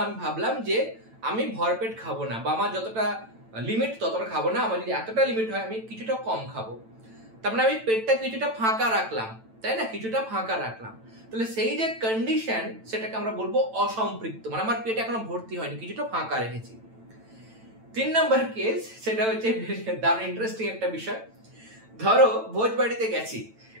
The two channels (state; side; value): late; left; 9.0 ms